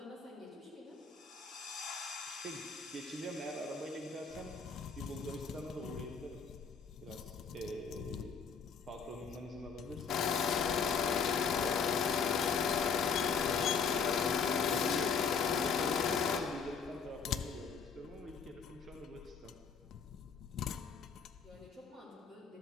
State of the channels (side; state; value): right; quieter; 5.9 dB